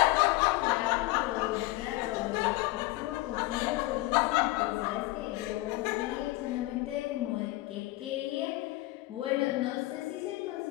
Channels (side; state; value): right; quieter; 19.7 dB